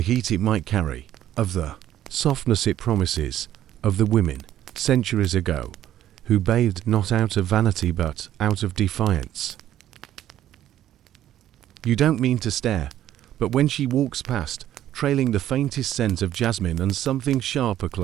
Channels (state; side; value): quieter; left; 12.2 dB